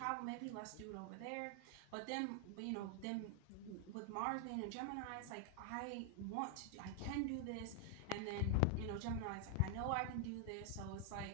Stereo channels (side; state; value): both; different; correlation 0.00